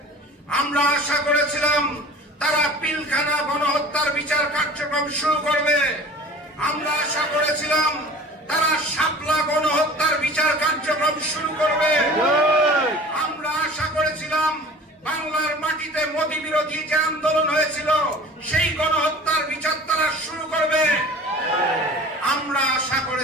আমরা আশা করেছিলাম তারা পিলখানা গণহত্যার বিচার কার্যক্রম শুরু করবে। আমরা আশা করেছিলাম তারা শাপলা গণহত্যার বিচার কার্যক্রম শুরু করবে। আমরা আশা করেছিলাম বাংলার মাটিতে মোদী বিরোধী যে আন্দোলন হয়েছিল সেই গণহত্যার বিচার তারা শুরু করবে। আমরা আশা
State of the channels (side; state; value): both; normal; correlation 0.42